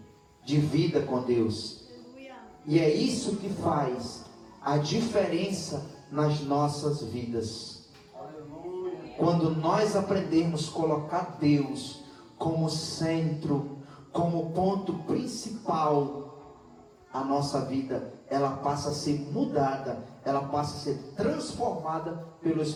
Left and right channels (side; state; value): both; identical; correlation 1.00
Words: de vida com Deus. E é isso que faz a diferença nas nossas vidas. Quando nós aprendemos a colocar Deus como centro, como ponto principal, a nossa vida, ela passa a ser mudada, ela passa a ser transformada pelo